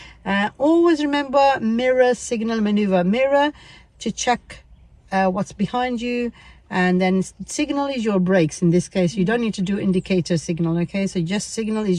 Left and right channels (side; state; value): both; identical; correlation 1.00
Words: Always remember mirror, signal, maneuver. Mirror to check what's behind you, and then signal is your brakes. In this case, you don't need to do indicator signal. Okay, so just signal